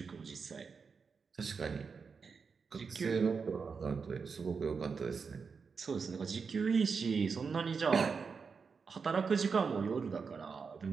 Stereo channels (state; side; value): quieter; left; 5.4 dB